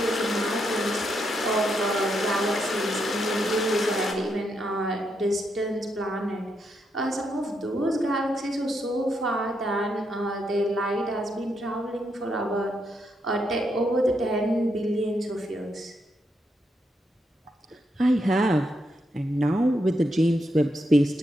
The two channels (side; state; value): both; normal; correlation 0.81